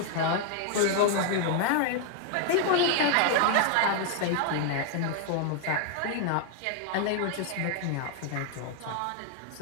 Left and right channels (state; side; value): different; both; correlation 0.00